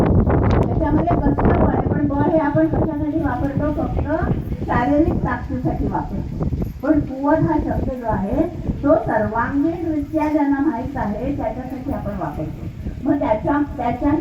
त्याच्यामध्ये कसलं बळ आहे? पण बळ हे आपण कशासाठी वापरतो? फक्त शारीरिक ताकदीसाठी वापरतो. पण कुवत हा शब्द जो आहे तो सर्वांगीणरित्या ज्यांना माहीत आहे त्याच्यासाठी आपण वापरतो. मग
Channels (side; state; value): both; identical; correlation 1.00